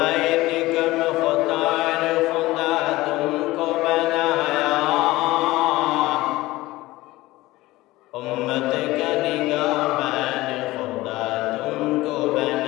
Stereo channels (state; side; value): quieter; right; 18.6 dB